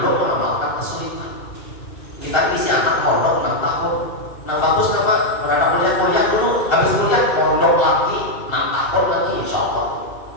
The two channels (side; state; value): right; late; 2.6 ms